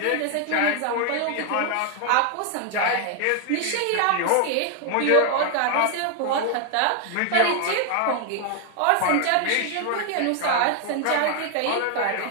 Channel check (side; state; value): both; different; correlation 0.00